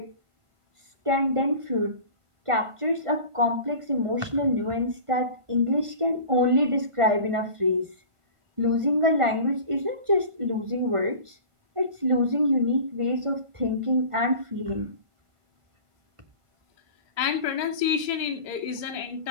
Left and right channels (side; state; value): left; late; 1.5 ms